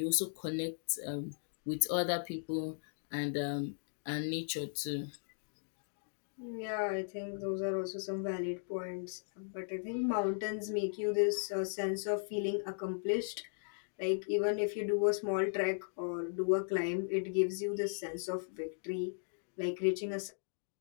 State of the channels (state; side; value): silent; right; digital silence